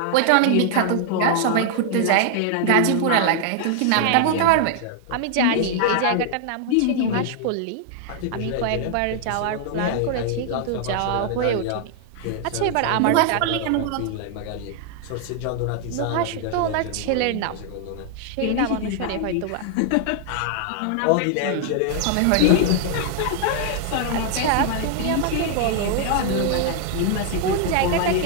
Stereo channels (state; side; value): different; both; correlation 0.00